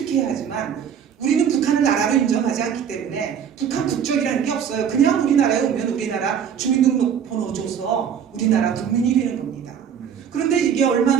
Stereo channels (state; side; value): quieter; left; 8.0 dB